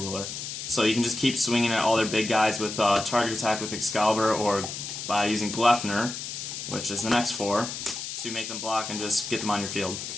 So you can just keep swinging at all their big guys with target attack with Excalibur or by using Gleipnir, which is the next 4, to make them block and just get them on your field.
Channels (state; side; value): noise; left; hiss, 7 dB below the sound